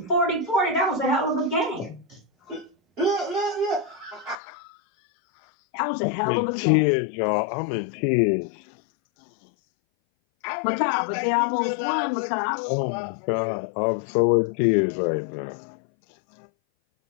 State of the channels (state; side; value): drops out; right; at 4.4 s